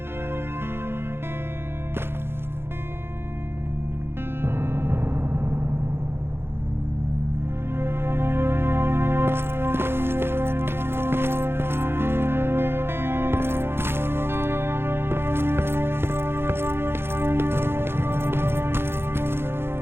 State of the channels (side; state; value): left; late; 0.11 ms